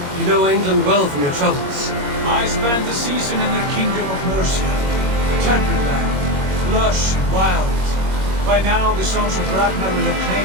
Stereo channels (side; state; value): left; late; 21 ms